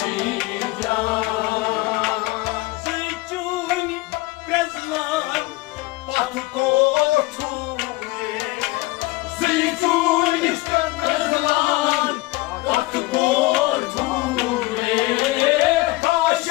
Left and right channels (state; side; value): quieter; right; 21.1 dB